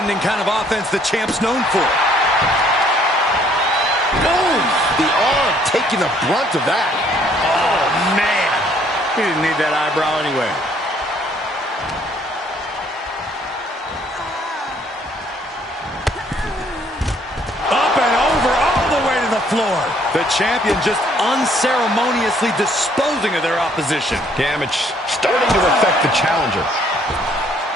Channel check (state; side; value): normal; both; correlation 0.63